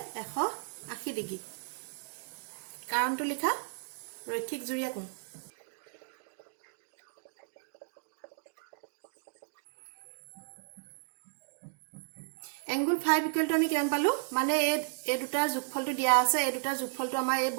80 ডিগ্ৰী কাৰণটো লিখা ৰৈখিক জুৰীয়া কোণ angle 5 equal to আমি কিমান পালো মানে এই দুটাৰ যোগফলটো দিয়া আছে এই দুটাৰ যোগফলটো আমাৰ এই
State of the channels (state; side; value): silent; left; digital silence